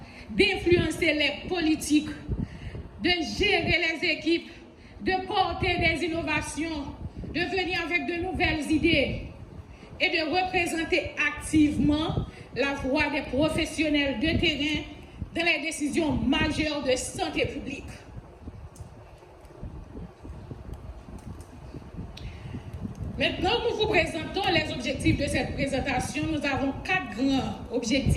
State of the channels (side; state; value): both; identical; correlation 1.00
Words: d'influencer les politiques, de gérer les équipes, de porter des innovations, de venir avec de nouvelles idées et de représenter activement la voix des professionnels de terrain dans les décisions majeures de santé publique. Maintenant, nous vous présentons les objectifs de cette présentation. Nous avons 4 grands